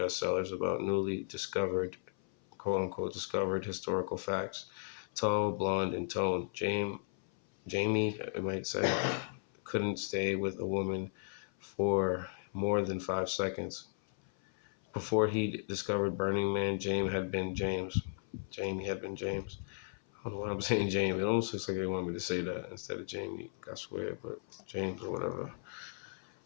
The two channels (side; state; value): right; silent; 54 dB below the other